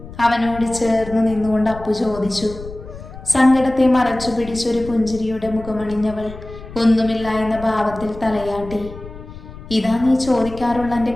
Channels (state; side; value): noise; left; rumble, 14 dB below the sound